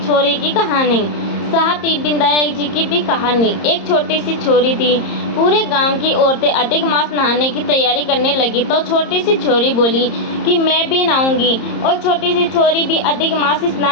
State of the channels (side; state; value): right; late; 30 ms